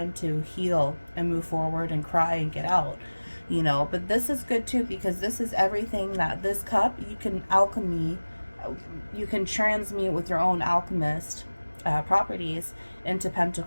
to heal and move forward and cry and get out, you know. But this is good too, because this is everything that this cup, you can alchemy, you can transmute with your own alchemist properties into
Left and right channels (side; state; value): both; inverted; correlation -1.00